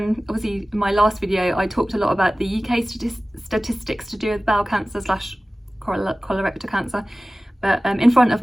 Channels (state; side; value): normal; both; correlation 0.97